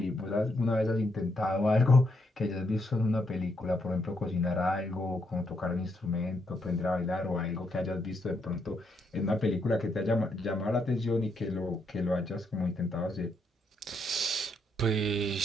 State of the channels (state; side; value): normal; both; correlation 0.77